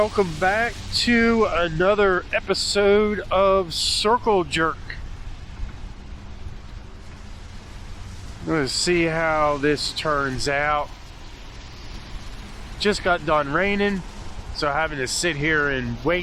back to another episode of Circle Jerk. Let's see how this turns out. Just got done raining, so having to sit here and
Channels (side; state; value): both; identical; correlation 1.00